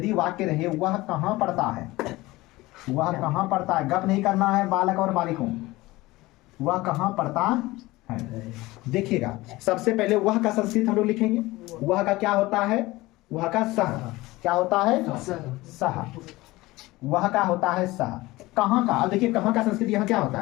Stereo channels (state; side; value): quieter; right; 19.6 dB